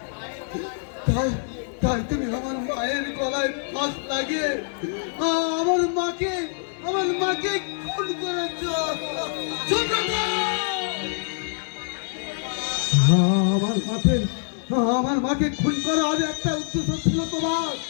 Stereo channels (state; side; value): silent; right; 62 dB below the other